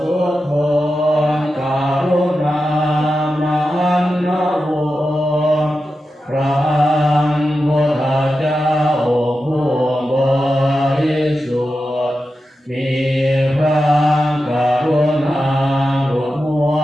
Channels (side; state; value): both; normal; correlation 0.91